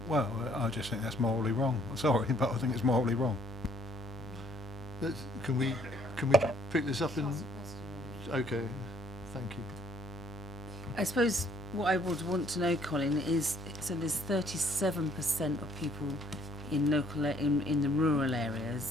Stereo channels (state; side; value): noise; right; hum, 14 dB below the sound